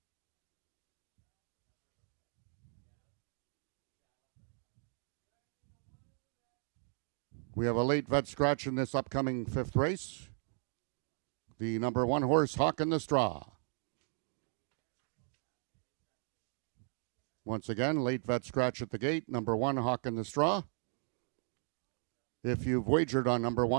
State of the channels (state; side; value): silent; left; 53 dB below the other